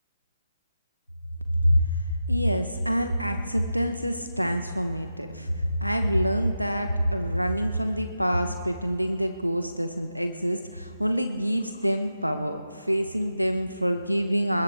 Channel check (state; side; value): inverted; both; correlation -0.90